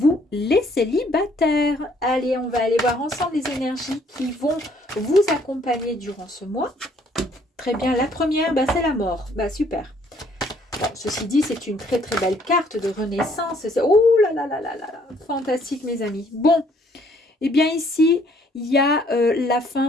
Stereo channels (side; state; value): both; normal; correlation 0.63